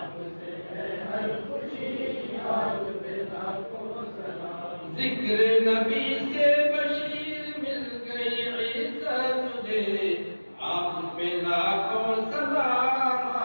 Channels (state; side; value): inverted; both; correlation -1.00